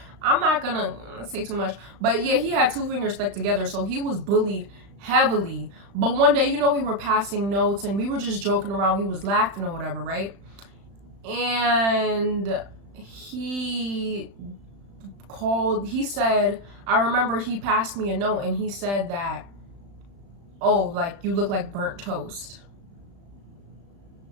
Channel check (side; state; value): left; late; 35 ms